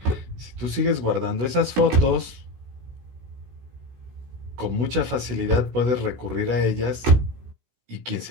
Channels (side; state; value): left; late; 16 ms